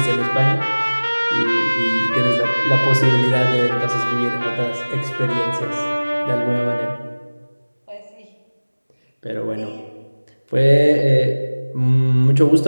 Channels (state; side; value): inverted; both; correlation -1.00